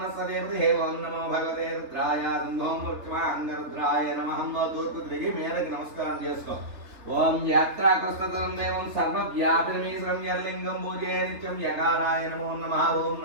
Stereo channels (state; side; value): late; left; 3.3 ms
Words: ఓం నమో భగవతే రుద్రాయ ఓం పశ్చిమాంగ రుద్రాయ నమః. తూర్పు తిరిగి మేరకు నమస్కారం చేసుకో. ఓం యాత్రాకృష్టం దేవం సర్వవ్యాపినమీశ్వరం యర్లింగం పూజే నిత్యం యకారాయ నమో నమః. ఓం